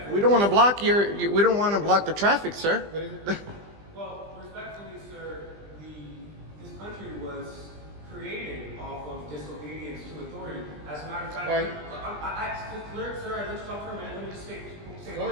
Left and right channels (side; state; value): left; late; 20 ms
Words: We don't want to block we don't want to block the traffic, sir. What is it? Well, respectfully, sir, this country was created off of disobedience to authority. As a matter of fact, Right. sir, I let you talk for a minute. Let me just say Go one